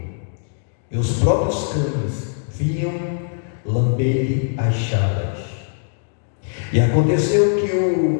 e os próprios cães vinham lamber-lhe as chagas. E aconteceu que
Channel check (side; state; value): right; silent; digital silence